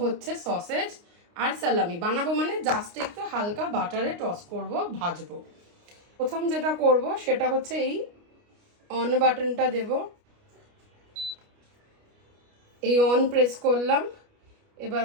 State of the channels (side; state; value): left; late; 29 ms